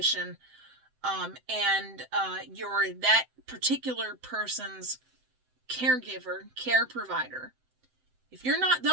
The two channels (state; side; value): late; left; 7.8 ms